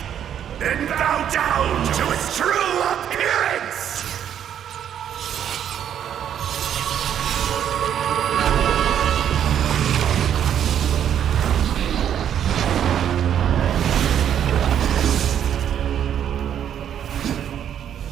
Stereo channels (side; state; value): left; quieter; 9.5 dB